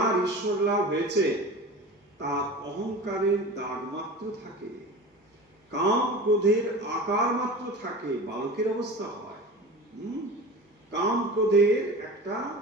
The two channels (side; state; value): both; normal; correlation 0.34